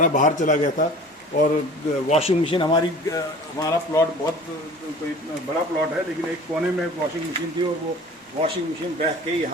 बाहर चला गया था। और वॉशिंग मशीन हमारा प्लॉट बहुत कोई बड़ा प्लॉट है, लेकिन एक कोने में वॉशिंग मशीन थी और वो वॉशिंग मशीन बह के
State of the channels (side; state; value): both; normal; correlation 0.43